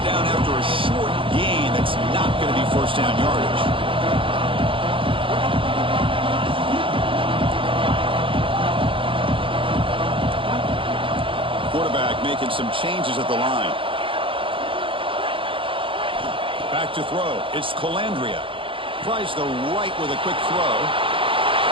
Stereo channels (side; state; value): left; late; 0.25 ms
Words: down after a short gain. That's not going to be first down yardage. Quarterback making some changes at the line. Back to throw. It's Calandria. Tries the right with a quick throw.